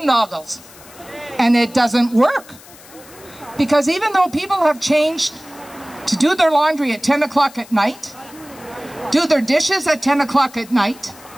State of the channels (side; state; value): left; noise; hiss, 21 dB below the sound